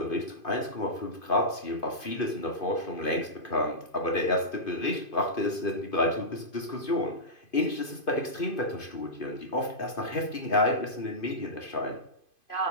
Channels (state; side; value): late; right; 2.5 ms